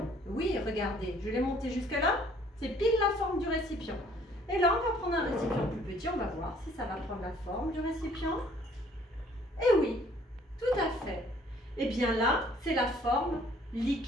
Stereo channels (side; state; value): both; normal; correlation 0.59